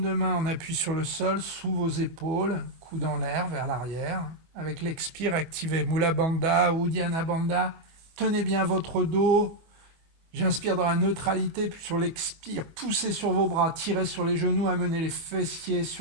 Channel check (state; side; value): late; left; 24 ms